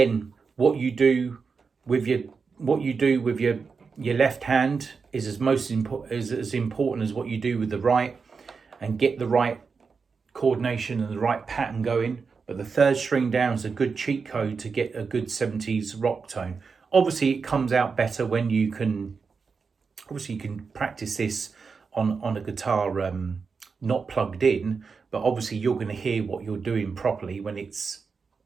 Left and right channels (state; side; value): quieter; left; 5.2 dB